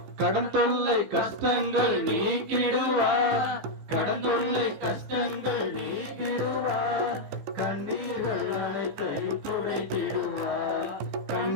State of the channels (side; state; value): left; late; 15 ms